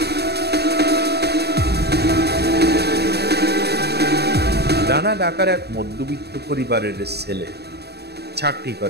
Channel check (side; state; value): left; late; 0.48 ms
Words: রানা ঢাকার এক মধ্যবিত্ত পরিবারের ছেলে, চাকরি